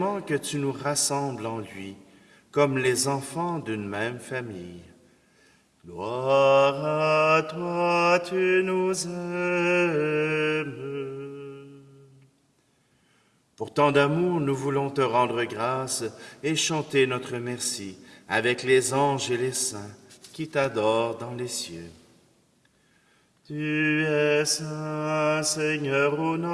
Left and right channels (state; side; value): identical; both; correlation 1.00